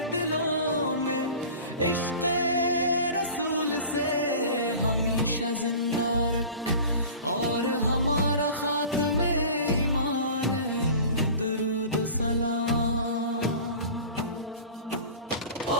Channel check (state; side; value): inverted; both; correlation -0.39